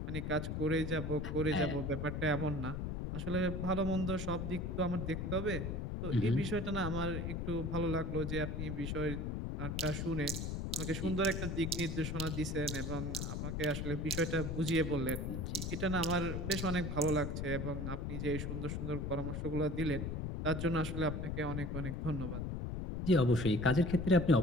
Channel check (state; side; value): noise; left; rumble, 3 dB below the sound